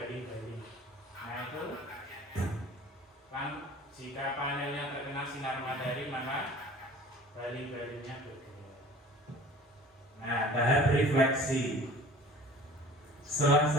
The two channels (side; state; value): both; normal; correlation 0.45